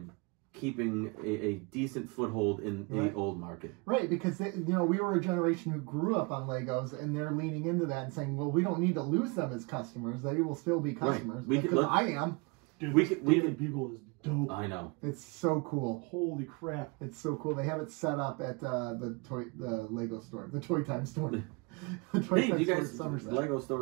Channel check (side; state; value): left; quieter; 28.8 dB